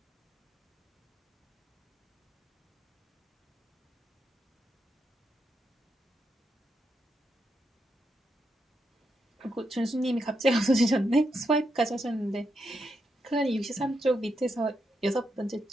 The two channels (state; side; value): normal; both; correlation 0.82